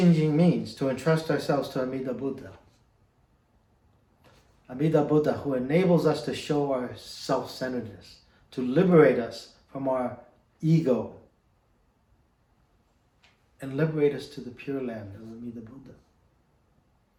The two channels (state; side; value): identical; both; correlation 1.00